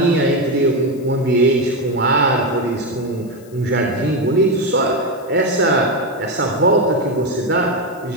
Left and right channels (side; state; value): left; noise; hiss, 27 dB below the sound